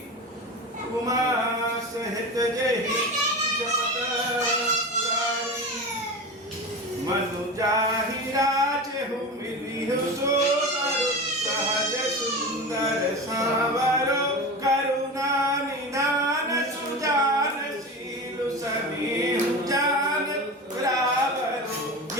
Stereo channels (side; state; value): both; normal; correlation 0.28